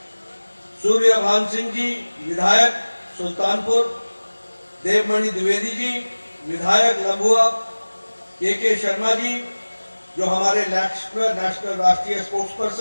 सूर्यभान सिंह जी विधायक सुल्तानपुर, देवमणि द्विवेदी जी विधायक लंबुआ, के शर्मा जी जो हमारे नेशनल राष्ट्रीय स्पोर्ट्स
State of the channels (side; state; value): both; inverted; correlation -1.00